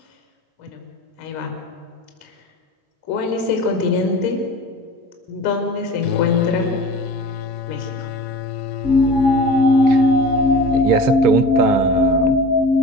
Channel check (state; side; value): late; left; 3.5 ms